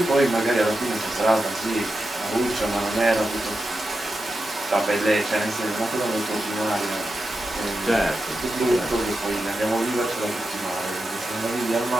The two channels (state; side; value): normal; both; correlation 0.89